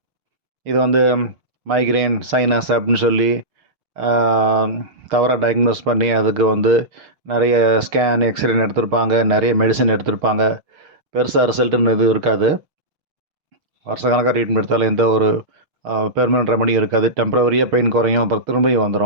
இது மைக்ரேன், சைனஸ் அப்படின்னு சொல்லி தவறாக டயக்னோஸ் பண்ணி அதுக்கு நிறைய ஸ்கேன், எக்ஸ்ரேன்னு எடுத்திருப்பாங்க, நிறைய மெடிசின் எடுத்திருப்பாங்க. பெருசாக ரிசல்ட்டுன்னு எதுவும் இருக்காது. வருஷக்கணக்காக ட்ரீட்மெண்ட் எடுத்தாலும் எந்த ஒரு பெர்மனன்ட் ரெமடியும் இருக்காது. டெம்ப்ரவரியாக பெயின் குறையும், அப்புறம் திரும்பியும்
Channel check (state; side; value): late; left; 6.5 ms